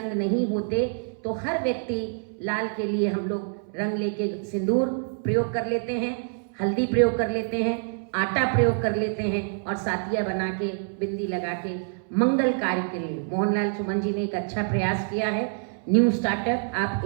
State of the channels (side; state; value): left; silent; 61 dB below the other